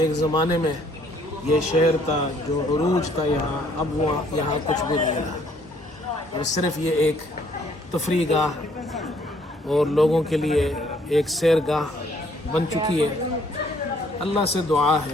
زمانے میں یہ شہر تھا، جو عروج تھا یہاں، اب وہ یہاں کچھ بھی نہیں رہا، اور صرف یہ ایک تفریح گاہ اور لوگوں کے لیے ایک سیر گاہ بن چکی ہے۔ اللہ سے دعا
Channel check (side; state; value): both; normal; correlation 0.64